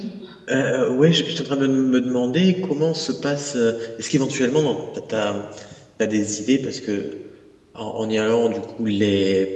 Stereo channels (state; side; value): identical; both; correlation 1.00